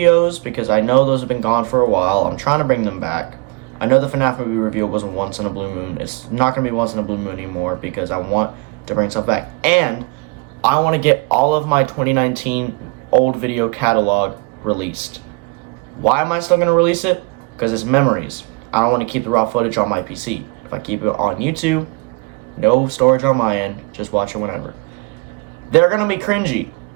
because I know those have been gone for a while. I'm trying to bring them back. I know the FNAF movie review was once in a blue moon. It's not going to be once in a blue moon anymore, because I want to bring stuff back. And I want to get all of my 2019 old video catalog released. Why am I still going to release it? Because it's memories. I don't want to keep the raw footage on my PC. If I keep it on YouTube, no storage on my end, just watch it whenever. They're going to be cringy.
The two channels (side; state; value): left; quieter; 28.6 dB